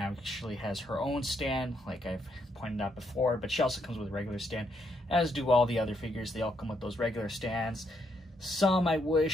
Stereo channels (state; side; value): normal; both; correlation 0.75